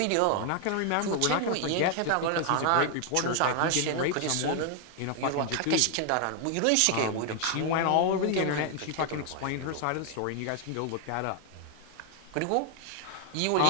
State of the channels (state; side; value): different; both; correlation 0.00